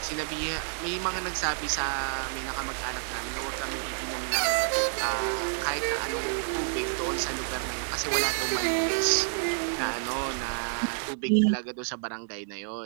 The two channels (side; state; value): left; silent; 59 dB below the other